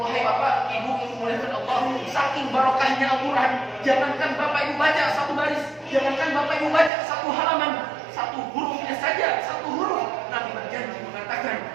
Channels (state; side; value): drops out; left; at 6.9 s